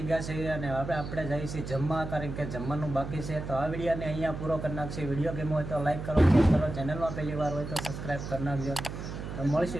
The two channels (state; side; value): noise; right; hum, 8 dB below the sound